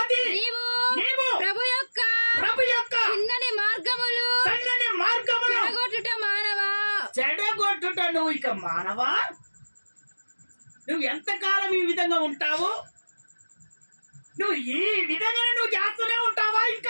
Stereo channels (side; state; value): both; inverted; correlation -1.00